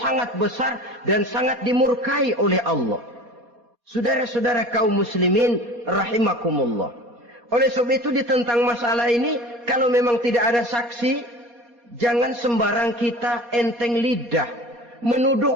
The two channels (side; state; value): left; late; 4.2 ms